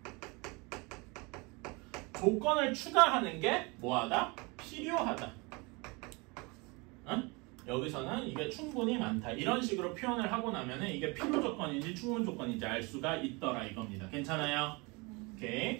조건을 추가하는 게 뭐하다? 필요하다. 여기서는 이게 충분히 많다. 이런 식으로 표현을 하고 나면은 이게 필요 조건인지 충분 조건인지 알 수가 있더라 이겁니다. 괜찮아요?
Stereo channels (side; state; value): left; quieter; 27.5 dB